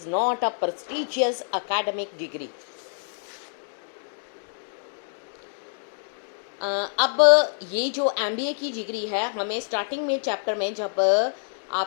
not a prestigious academic degree. अब ये जो MBA की डिग्री है हमें स्टार्टिंग में चैप्टर में जब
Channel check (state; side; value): silent; right; digital silence